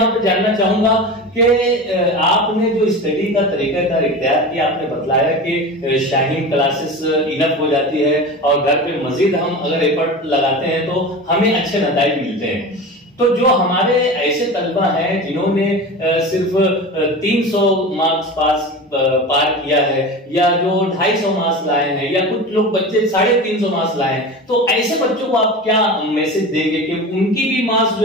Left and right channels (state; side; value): normal; both; correlation 0.30